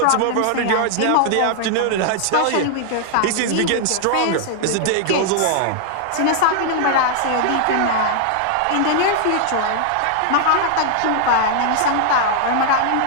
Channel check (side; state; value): both; different; correlation 0.00